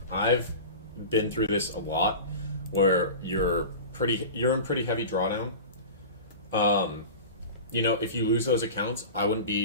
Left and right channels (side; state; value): both; inverted; correlation -0.32